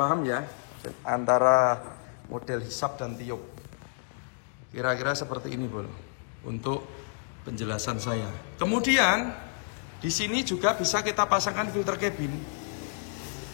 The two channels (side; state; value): right; silent; 58 dB below the other